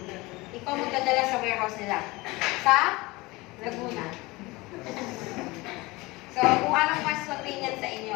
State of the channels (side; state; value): right; quieter; 22.3 dB